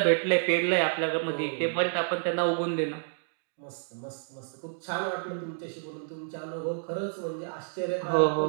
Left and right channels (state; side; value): silent; left; digital silence